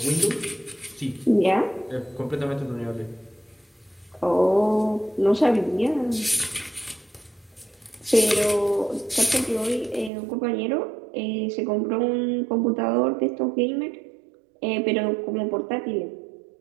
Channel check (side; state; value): left; drops out; at 10.1 s